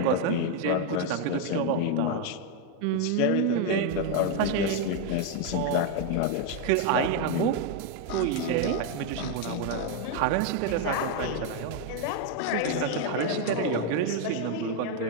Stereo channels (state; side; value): different; both; correlation 0.01